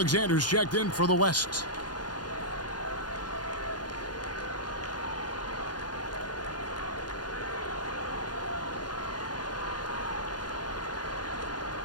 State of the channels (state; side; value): late; right; 0.70 ms